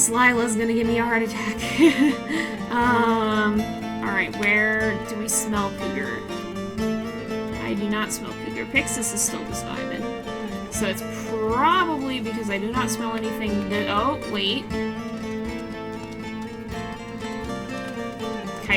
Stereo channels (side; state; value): both; identical; correlation 1.00